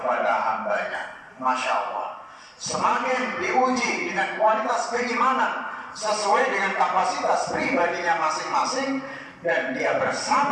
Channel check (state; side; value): identical; both; correlation 1.00